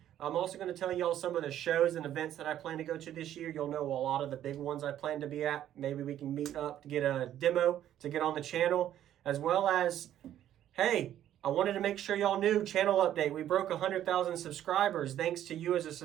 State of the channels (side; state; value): left; quieter; 11.5 dB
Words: I'm also going to tell y'all some of the shows and events that I plan to go to this year. You'll know a lot of the big ones I plan to be at. Maybe we can meet up to get a demo to get on the channel, as well as, hey, I wanted to make sure y'all knew, channel update. We broke 100,000 subscribers thanks to you as a